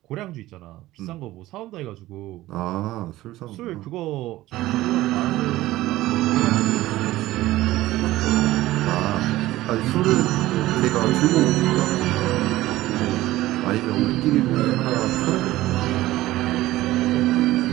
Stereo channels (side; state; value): left; quieter; 16.5 dB